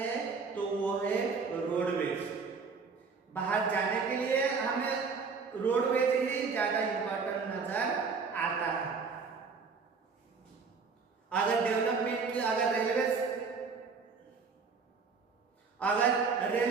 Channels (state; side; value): quieter; left; 5.0 dB